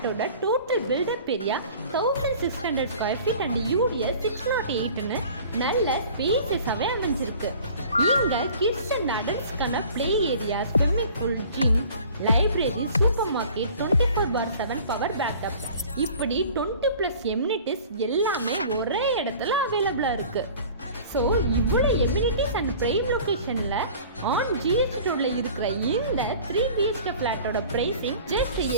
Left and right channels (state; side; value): inverted; both; correlation -0.46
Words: total built up area 1600 square feet and UDS 608ன்னு நல்ல ஸ்பேசஸாவே அமைஞ்சிருக்கு. இங்க கிட்ஸ் அண்ட் அடல்ட்ஸ்க்கான play area, swimming pool, gym, library, supermarket, 24/7 power backup, இப்படி 20+ எம்யூனிட்டிஸ் எல்லாமே ஒரே இடத்துல அவைலபிளா இருக்கு. ஸோ இவ்வளோ எம்யூனிட்டிஸ் அண்ட் பிரைம் லொக்கேஷன்ல ஆன் ஜிஎஸ்டி ரோட்ல இருக்கிற இந்த 3 BHK ஃபிளாட்டோட பிரைசிங் ஜஸ்ட்